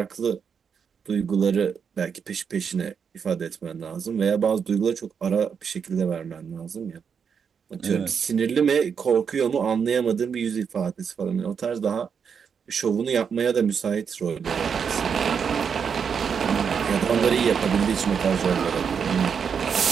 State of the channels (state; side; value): quieter; left; 6.7 dB